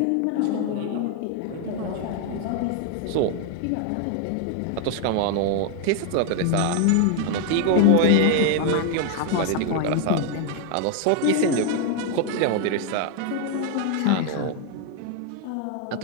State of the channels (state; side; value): different; both; correlation 0.01